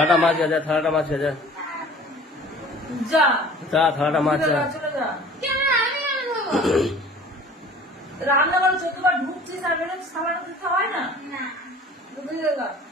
মাছ যা, থালাটা মাছ যা, যা যা থালাটা মাছ যা। চলে যা। রান্না করে 14 বার ঢুকছিস আর বেরোচ্ছিস, খাবার দিতে হয় না?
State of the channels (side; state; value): both; normal; correlation 0.47